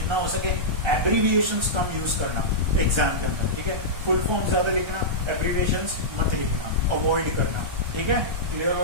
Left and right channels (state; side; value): late; left; 1.3 ms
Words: हो सके एब्रीविएशंस कम यूज करना एग्जाम के अंदर, ठीक है, फुल फॉर्म ज्यादा लिखना, एब्रीविएशंस मत लिखना, अवॉइड करना, ठीक है, क्लियर हो